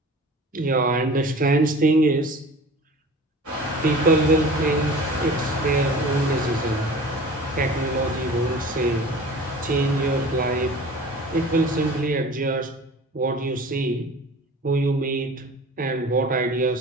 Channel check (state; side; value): normal; both; correlation 0.41